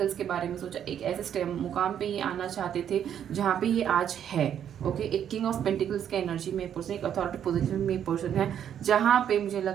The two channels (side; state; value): left; quieter; 9.4 dB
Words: के बारे में सोचा। एक ऐसे मुकाम पर ये आना चाहते थे जहाँ पर ये आज है, ओके। एक किंग ऑफ पेंटिकल्स के एनर्जी में पर्सन, एक अथॉरिटी पोजीशन में पर्सन है, जहाँ पे मुझे